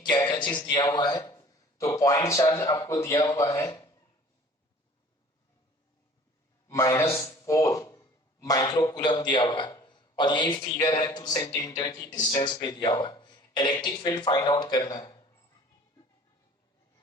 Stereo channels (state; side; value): normal; both; correlation 0.48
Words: क्या चीज दिया हुआ है। तो पॉइंट चार्ज आपको दिया हुआ है -4 माइक्रो कूलम दिया हुआ है, और यही फिगर है 2 सेंटीमीटर की डिस्टेंस पे दिया हुआ है। इलेक्ट्रिक फील्ड फाइंड आउट करना है,